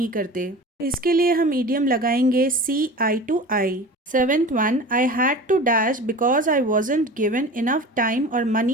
करते। इसके लिए हम इडियम लगाएंगे see eye to eye. Seventh one, I had to dash because I wasn't given enough time और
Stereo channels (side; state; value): both; normal; correlation 0.36